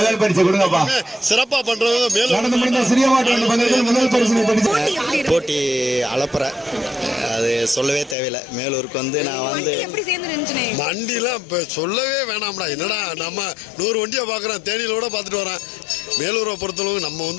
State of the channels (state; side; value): drops out; right; at 8.2 s